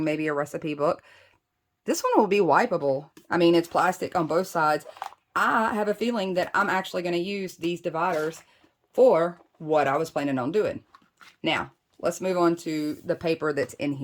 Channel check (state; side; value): identical; both; correlation 1.00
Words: maybe a recipe book. This one will be wipeable. I mean, it's plastic on both sides. I have a feeling that I'm actually going to use these dividers for what I was planning on doing. Now, let's move on to the paper that's in